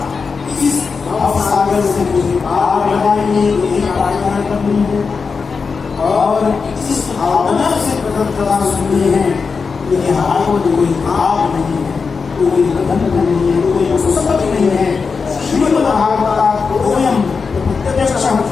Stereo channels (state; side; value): quieter; right; 5.1 dB